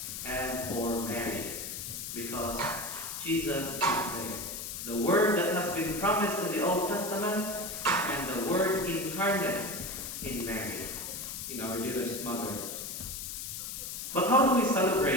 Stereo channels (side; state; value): left; noise; hiss, 6 dB below the sound